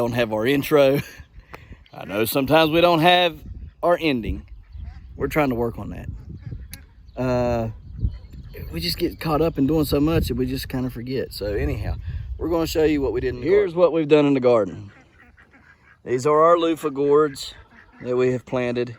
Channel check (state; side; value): identical; both; correlation 1.00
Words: have our intro. I know sometimes we don't have our ending. We're trying to work on that. We just get caught up in doing so much that we just kind of forget. So anyhow, we're going to show you what we did in the garden. Here's what we've done in the garden. These are our loofah gourds that we have planted